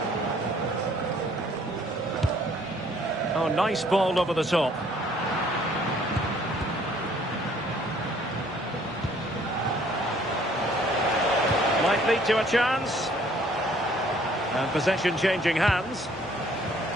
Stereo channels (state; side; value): normal; both; correlation 0.60